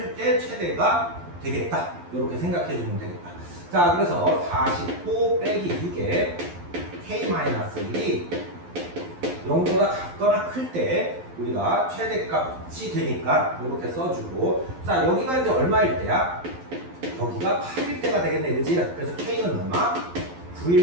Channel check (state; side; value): late; left; 11 ms